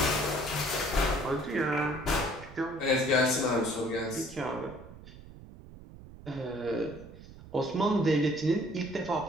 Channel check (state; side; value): noise; right; rumble, 17 dB below the sound